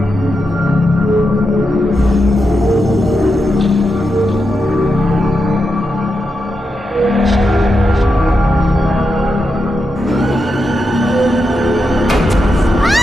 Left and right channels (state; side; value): normal; both; correlation 0.87